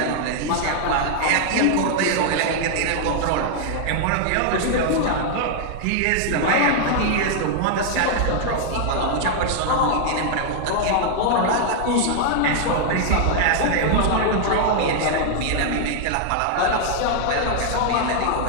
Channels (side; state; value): both; different; correlation 0.00